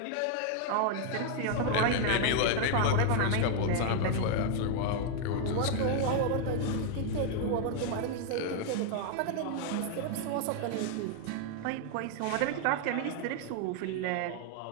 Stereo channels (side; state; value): both; different; correlation 0.00